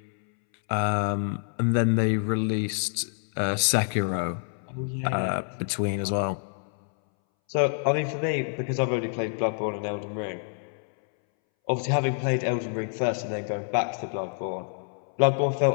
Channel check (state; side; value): silent; right; 60 dB below the other